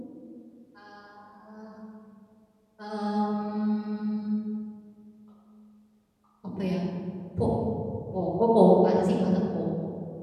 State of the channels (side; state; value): both; identical; correlation 1.00